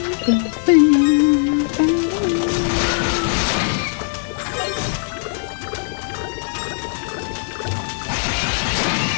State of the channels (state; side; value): silent; right; digital silence